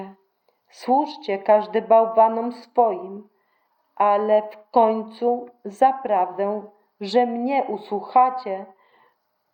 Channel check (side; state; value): both; identical; correlation 1.00